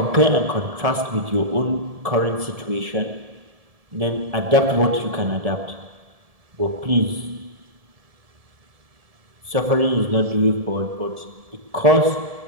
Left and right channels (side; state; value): left; late; 1.7 ms